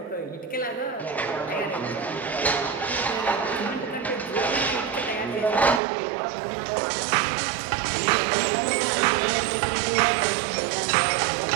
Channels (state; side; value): drops out; left; at 5.8 s